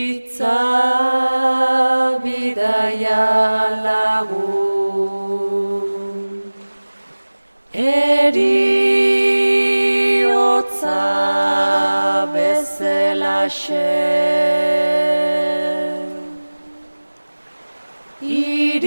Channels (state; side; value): inverted; both; correlation -1.00